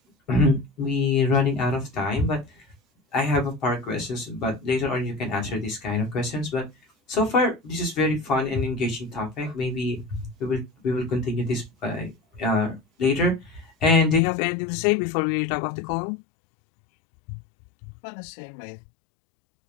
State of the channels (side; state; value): right; drops out; at 14.2 s